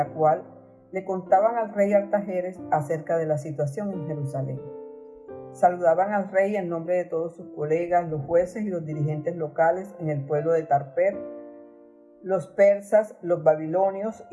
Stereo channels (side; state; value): both; identical; correlation 1.00